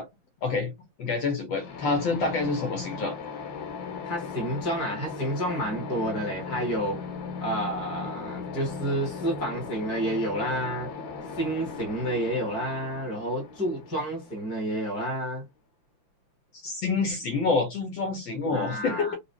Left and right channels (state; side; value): late; right; 5.8 ms